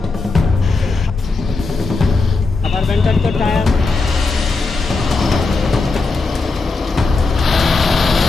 আবার বেন্টার তো টায়ার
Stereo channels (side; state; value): right; quieter; 3.8 dB